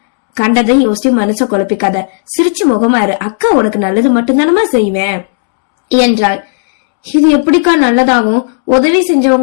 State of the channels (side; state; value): right; silent; digital silence